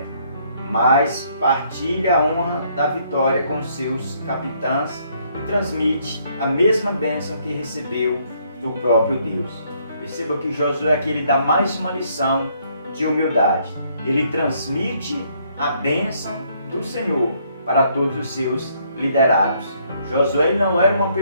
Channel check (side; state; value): both; inverted; correlation -0.68